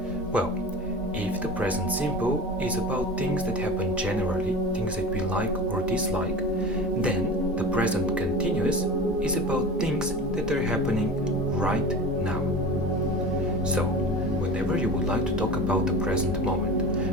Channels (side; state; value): both; normal; correlation 0.33